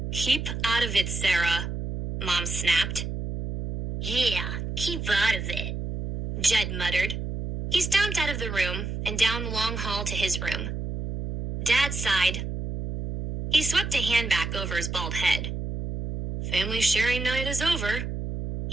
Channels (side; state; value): right; noise; hum, 5 dB below the sound